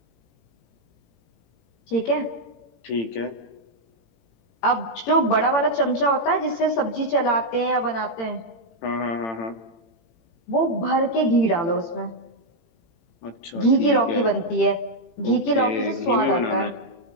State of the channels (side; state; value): right; late; 18 ms